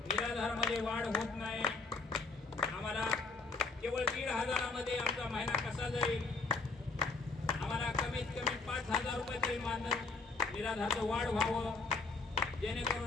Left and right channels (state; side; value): quieter; right; 4.0 dB